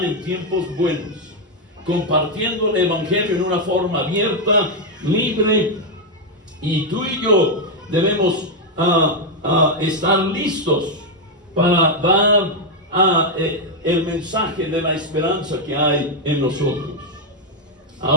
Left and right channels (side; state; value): both; normal; correlation 0.02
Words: en tiempos buenos, compartiendo el Evangelio en una forma abierta, libre, y tú y yo debemos estar listos para dar el mensaje de la esperanza que hay en nosotros.